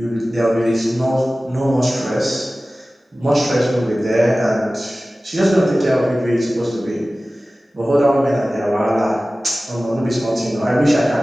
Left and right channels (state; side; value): normal; both; correlation 0.97